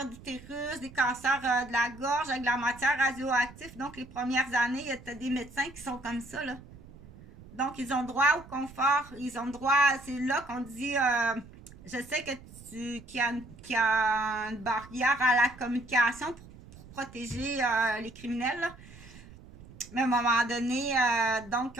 d'utérus, des cancers de la gorge avec de la matière radioactive. Donc, les premières années, il y a des médecins qui sont comme ça, là. Donc, ils ont droit au confort. Ils ont droit, c'est là qu'on dit, je sais que qu'il y a une barrière à la communication pour protéger les criminels, là. Mais à un moment donné, donc,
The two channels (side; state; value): right; noise; rumble, 19 dB below the sound